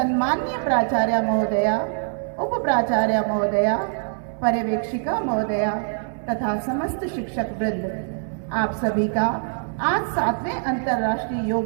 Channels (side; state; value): left; silent; 63 dB below the other